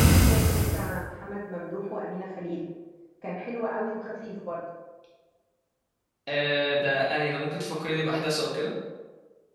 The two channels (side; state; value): both; identical; correlation 1.00